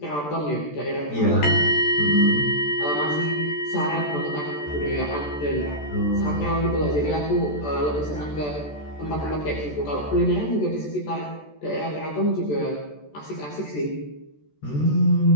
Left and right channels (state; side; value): late; right; 14 ms